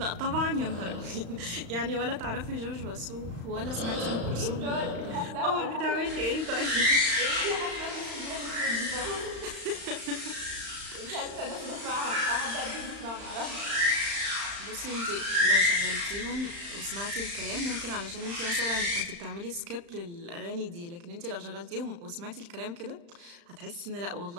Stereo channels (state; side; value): late; left; 35 ms